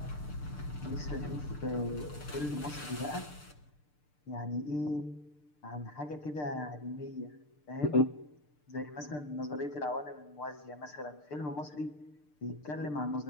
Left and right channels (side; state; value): right; late; 6.7 ms